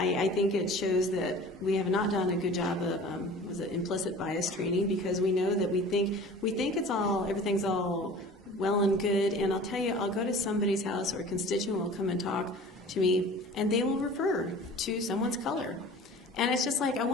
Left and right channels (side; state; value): both; normal; correlation 0.43